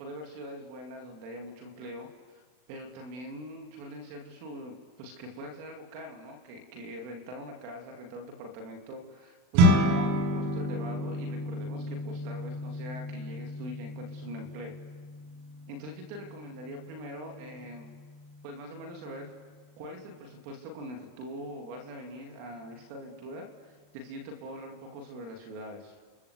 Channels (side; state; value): left; late; 39 ms